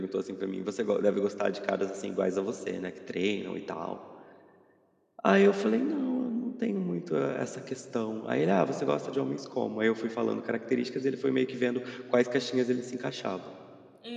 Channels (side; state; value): both; identical; correlation 1.00